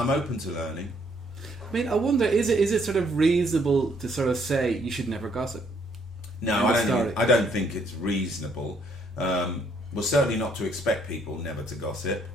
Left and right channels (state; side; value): normal; both; correlation 0.68